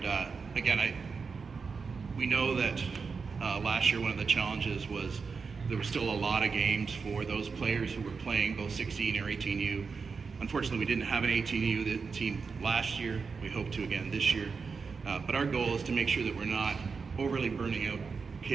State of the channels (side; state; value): left; quieter; 5.1 dB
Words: again, we know that last year one of the challenges was there was still a lot of games for those players who were playing both 16 or 18U. Unfortunately, we didn't have an 18U team last year. We hope to again this year. But our goal is to make sure that we're not overly burning out